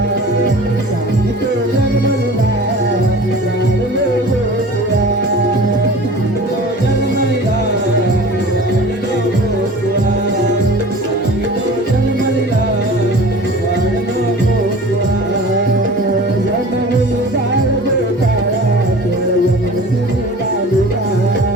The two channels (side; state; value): both; normal; correlation 0.41